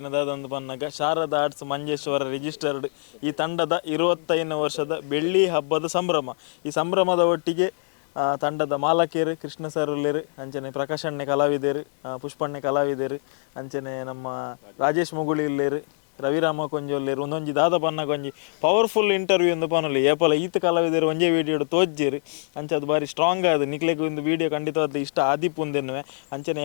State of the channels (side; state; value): right; silent; 62 dB below the other